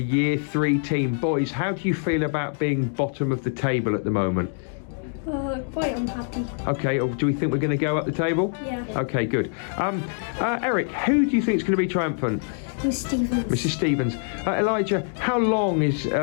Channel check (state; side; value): silent; right; 57 dB below the other